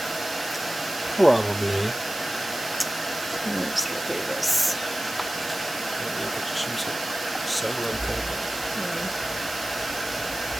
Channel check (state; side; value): noise; right; hiss, 9 dB below the sound